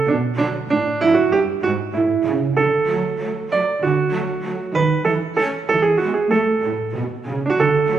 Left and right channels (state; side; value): quieter; left; 3.5 dB